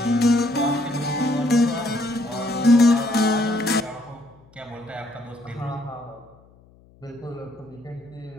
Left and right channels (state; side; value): noise; left; hum, 28 dB below the sound